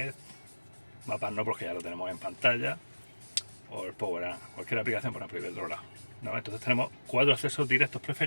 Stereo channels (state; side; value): inverted; both; correlation -1.00